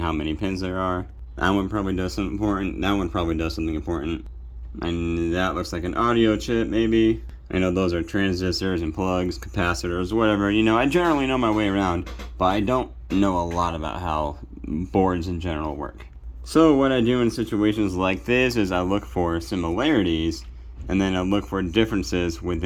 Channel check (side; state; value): both; identical; correlation 1.00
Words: how many pins there are. That one probably does something important. That one probably does something important. And that looks like an audio chip, maybe. I know those are transistors and plugs, capacitors, whatever. You know, I generally know my way around, but I don't know a lot about how boards in general work. So what I do in situations like this is I look for similarities, and then I look for differences